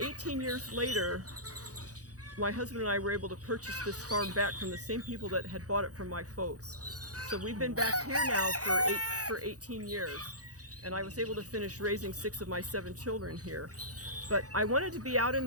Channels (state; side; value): late; left; 0.67 ms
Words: years later, my husband and I were able to purchase this farm back from the same people that had bought it from my folks. So we've been back here now for 18 years, and I was able to finish raising 6 of my 7 children here. But I wanted to be out in